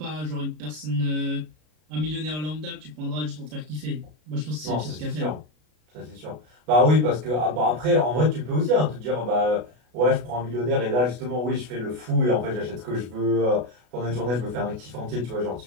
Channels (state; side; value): late; left; 33 ms